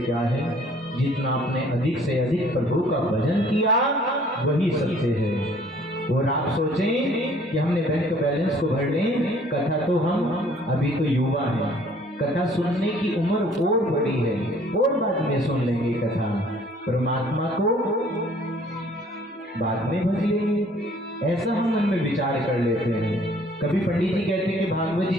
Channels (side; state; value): both; normal; correlation 0.57